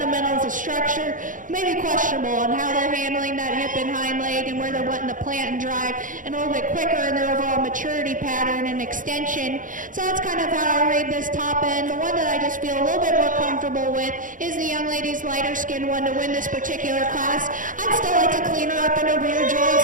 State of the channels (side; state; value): left; late; 0.38 ms